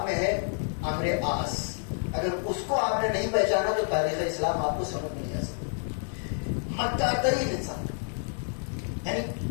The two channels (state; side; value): silent; right; 59 dB below the other